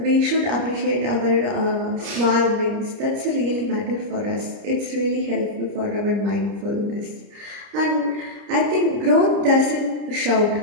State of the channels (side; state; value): left; late; 30 ms